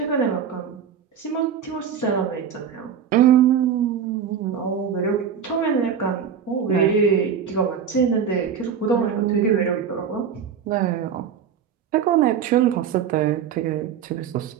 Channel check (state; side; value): quieter; left; 7.6 dB